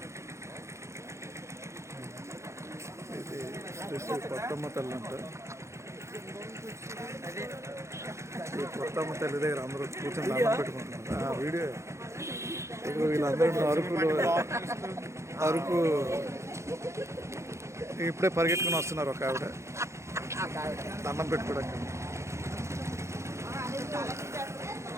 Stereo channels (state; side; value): late; left; 0.14 ms